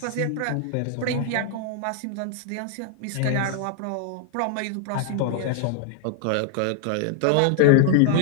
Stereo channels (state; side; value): different; both; correlation 0.00